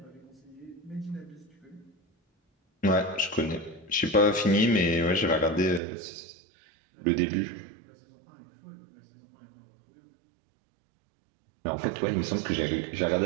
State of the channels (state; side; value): drops out; left; at 5.8 s